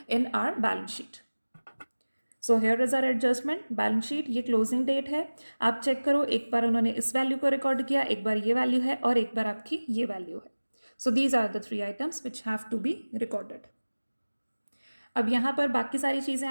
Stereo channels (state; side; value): inverted; both; correlation -1.00